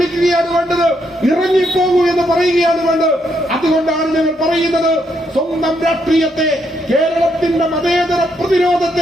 വേണ്ടത്, ഇറങ്ങിപ്പോകൂ എന്ന് പറയുകയാണ് വേണ്ടത്. അതുകൊണ്ടാണ് ഞങ്ങൾ പറയുന്നത്, സ്വന്തം രാഷ്ട്രീയത്തെ, കേരളത്തിന്റെ മതേതര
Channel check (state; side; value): normal; both; correlation 0.76